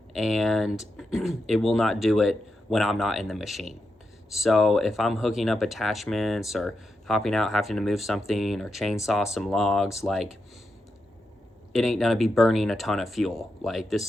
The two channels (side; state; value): both; normal; correlation 0.87